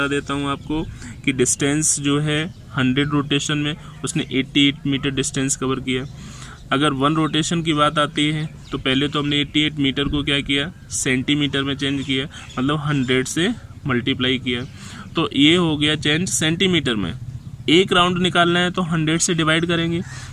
देता हूँ आपको कि डिस्टेंस जो है 100 रोटेशन में उसने 88 मीटर डिस्टेंस कवर किया। अगर 1 रोटेशन की बात आती है तो पहले तो हमने 88 मीटर को क्या किया, सेंटीमीटर में चेंज किया, मतलब 100 से मल्टीप्लाई किया, तो ये हो गया चेंज सेंटीमीटर में। एक राउंड निकालना है तो 100 से डिवाइड करेंगे,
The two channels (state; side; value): identical; both; correlation 1.00